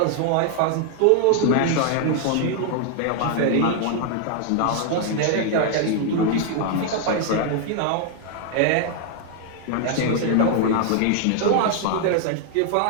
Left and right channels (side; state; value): both; different; correlation 0.00